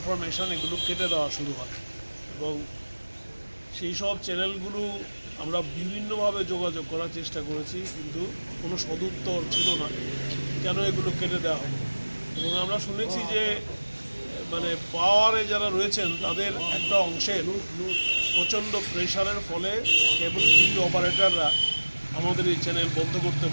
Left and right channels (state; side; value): inverted; both; correlation -1.00